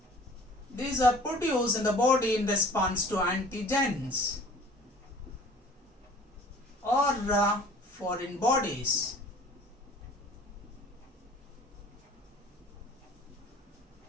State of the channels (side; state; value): both; normal; correlation 0.49